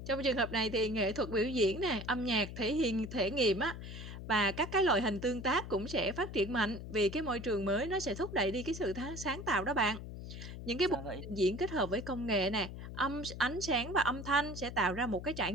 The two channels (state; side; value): noise; left; hum, 10 dB below the sound